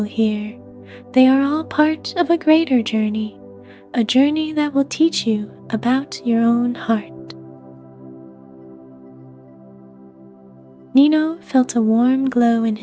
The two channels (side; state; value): both; identical; correlation 1.00